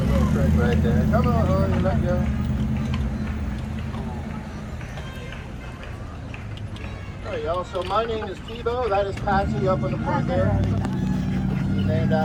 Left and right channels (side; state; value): both; identical; correlation 1.00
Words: little trick right there. Come on, honey, let go. There you go. So my name is Tebow. That is Patsy up in the front there. She's named